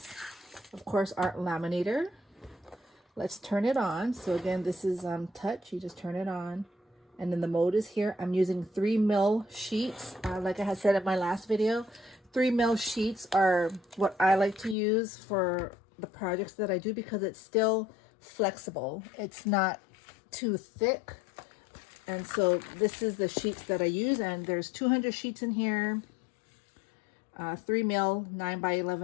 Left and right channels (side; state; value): right; drops out; at 14.8 s